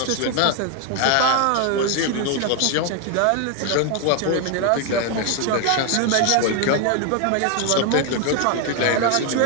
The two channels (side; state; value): both; different; correlation 0.01